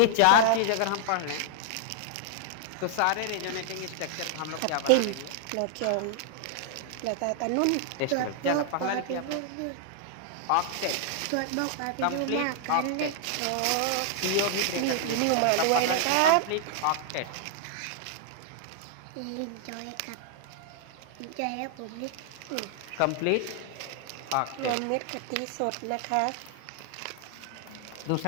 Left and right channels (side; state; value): both; different; correlation -0.01